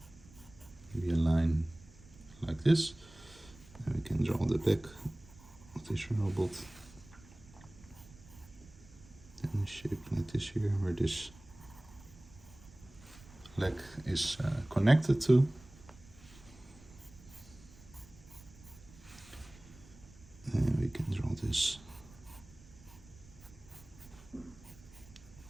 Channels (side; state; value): right; noise; rumble, 22 dB below the sound